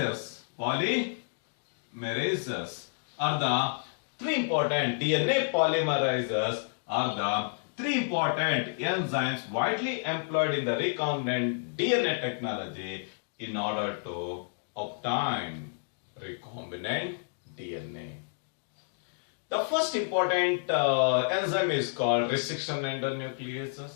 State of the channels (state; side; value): silent; right; digital silence